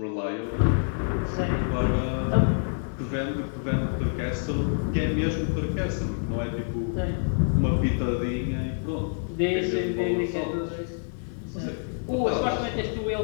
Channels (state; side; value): silent; right; 60 dB below the other